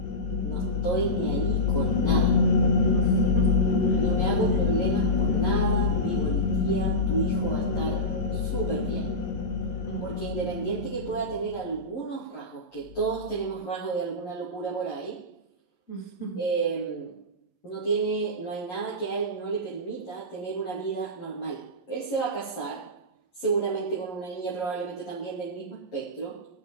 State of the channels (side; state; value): right; late; 11 ms